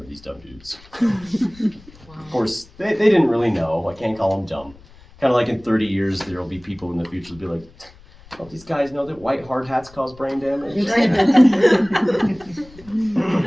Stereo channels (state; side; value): noise; left; rumble, 24 dB below the sound